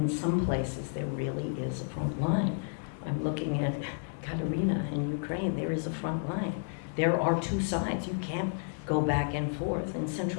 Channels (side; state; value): right; silent; 57 dB below the other